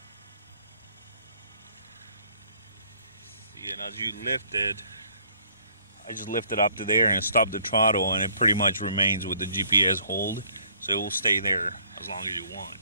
See, and as you lift it, I just lift it up to there and stop the throttle, and it pretty much remains with the GPS hold, so it will stay there as long as you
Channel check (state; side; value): inverted; both; correlation -0.63